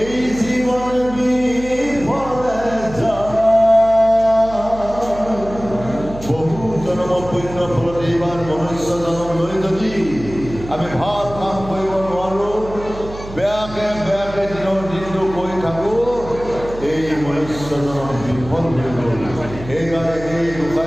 জীৱন বিফলে যায় বহু জনম পুণ্য ফলত এইবাৰ মনুষ্য জনম লৈ যদি আমি ভাল কাম কৰিব নোৱাৰোঁ বেয়াকে বেয়াকে দিনটো কৰি থাকোঁ এই মনুষ্য জনম বিফল হৈ গ'ল সেইকাৰণে এই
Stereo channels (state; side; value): noise; right; hum, 13 dB below the sound